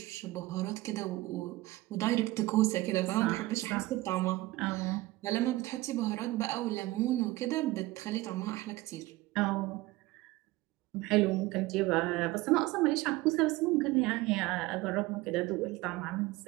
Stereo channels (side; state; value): left; quieter; 19.0 dB